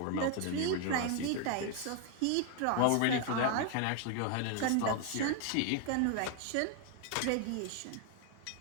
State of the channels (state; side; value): different; both; correlation 0.01